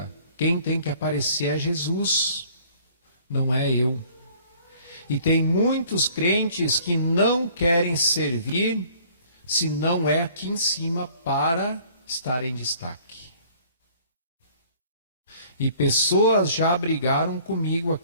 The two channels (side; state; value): both; inverted; correlation -0.55